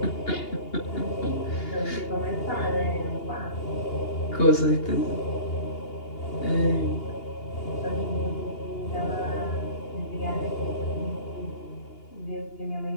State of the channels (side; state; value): right; late; 2.8 ms